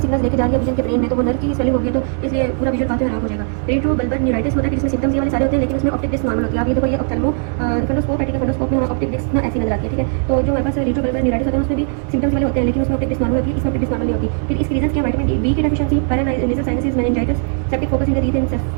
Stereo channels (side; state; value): left; silent; 55 dB below the other